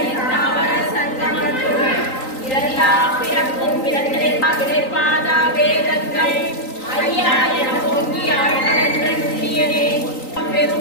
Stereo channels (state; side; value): late; right; 3.9 ms